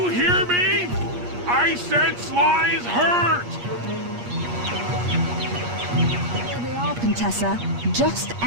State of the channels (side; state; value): left; late; 8.4 ms